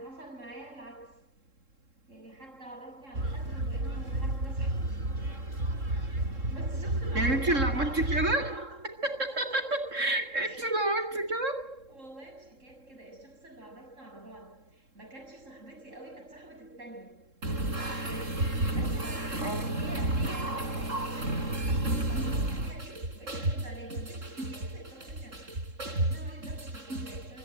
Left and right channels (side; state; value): left; late; 3.7 ms